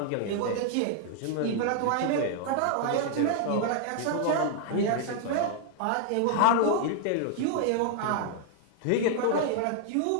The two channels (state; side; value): different; both; correlation 0.00